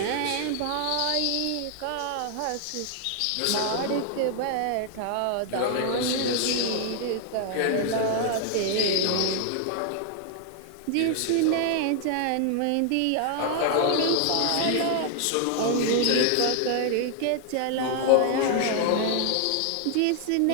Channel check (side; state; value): both; different; correlation 0.00